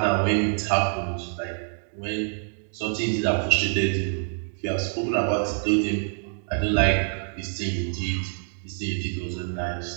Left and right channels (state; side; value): silent; left; 57 dB below the other